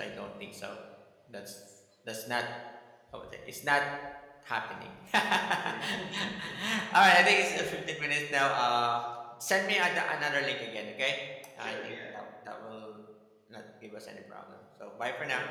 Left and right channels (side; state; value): both; identical; correlation 1.00